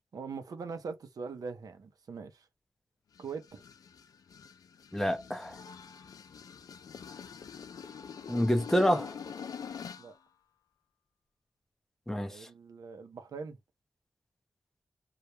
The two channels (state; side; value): normal; both; correlation 0.91